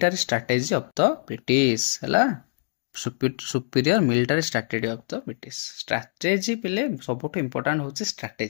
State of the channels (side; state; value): right; silent; digital silence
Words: strategy of the British हला superior military strategy of the British strategy पिले सबुठ इंपोर्टेंट होचे